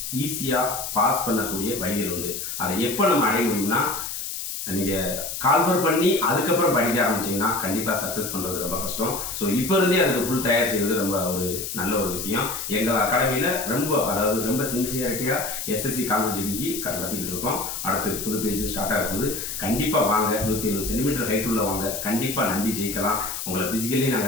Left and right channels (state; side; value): noise; left; hiss, 5 dB below the sound